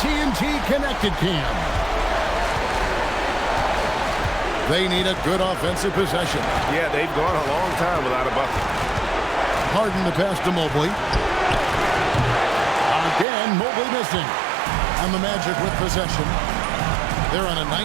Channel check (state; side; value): drops out; left; at 13.2 s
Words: Connected Cam. They need a good offensive possession. Yeah, they've gone a long time without a bucket. Harden to pass to Mobley. Again, Mobley missing. And the Magic with possession. They're on a